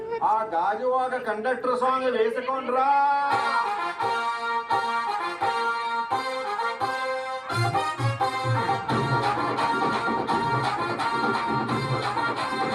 ఆ గాజువాక కండక్టర్ సాంగ్ వేసుకోండ్రా.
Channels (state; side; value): identical; both; correlation 1.00